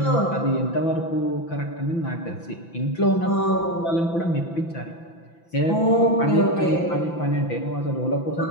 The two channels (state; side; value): late; right; 6.0 ms